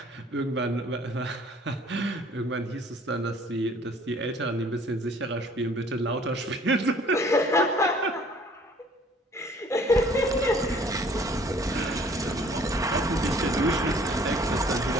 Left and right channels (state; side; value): normal; both; correlation 0.55